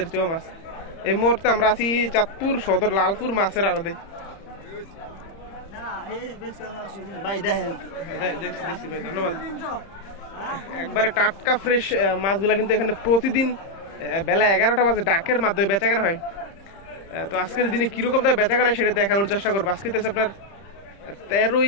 চেওয়া মাছ। এই মুহূর্তে আমরা আছি চাঁদপুর সদর লালপুর মাছের আড়তে। দেখছি ভাই, ধন্যবাদ। একবারে টাটকা ফ্রেশ মাছগুলা কিন্তু এখানে প্রতিদিন বেলা 11টা বাজে ডাকের মাধ্যমে বেচাকেনা হয়। তো আজকের দিনে কিরকম তার বেচাকেনা সেটা দেখানোর চেষ্টা করবো। আজকে আপনার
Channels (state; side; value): late; right; 30 ms